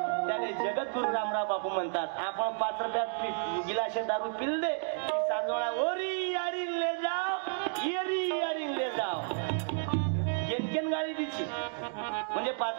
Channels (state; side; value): silent; left; 57 dB below the other